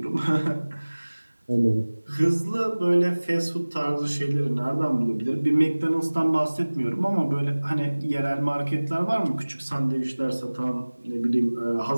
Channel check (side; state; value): both; inverted; correlation -1.00